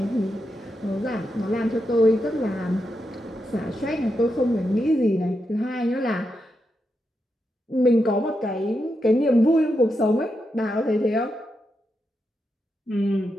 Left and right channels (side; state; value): both; normal; correlation 0.85